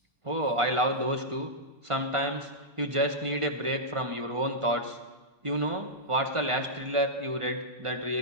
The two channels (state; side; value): late; left; 1.5 ms